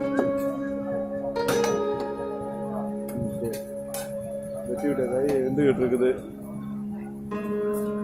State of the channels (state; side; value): identical; both; correlation 1.00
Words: வெட்டி விட்ட காய் வெந்துகிட்டு இருக்குது.